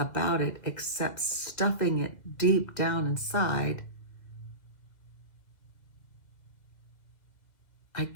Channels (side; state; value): right; late; 2.0 ms